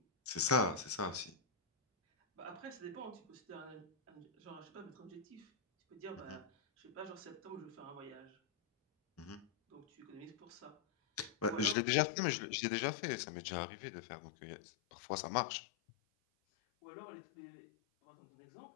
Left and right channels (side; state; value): right; drops out; at 11.8 s